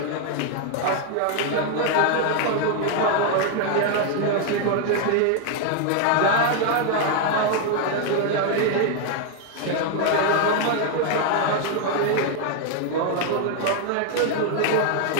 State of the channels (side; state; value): both; different; correlation 0.00